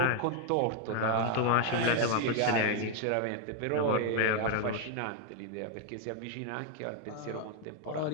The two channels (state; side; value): different; both; correlation 0.00